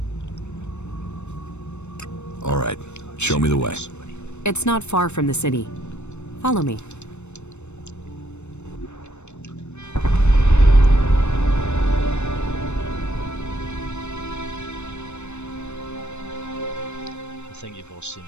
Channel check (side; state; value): right; late; 0.82 ms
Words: All right, show me the way. It's not far from the city. Follow me. I think you've all seen